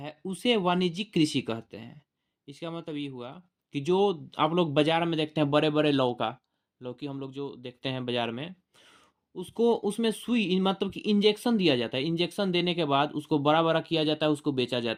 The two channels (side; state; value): both; identical; correlation 1.00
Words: उसे वाणिज्यिक कृषि कहते हैं। इसका मतलब ये हुआ कि जो आप लोग बाजार में देखते हैं बड़े बड़े लौकी हम लोग जो देखते हैं बाजार में, उसको उसमें सुई मतलब कि इंजेक्शन दिया जाता है। इंजेक्शन देने के बाद उसको बड़ा बड़ा किया जाता है, उसको बेचा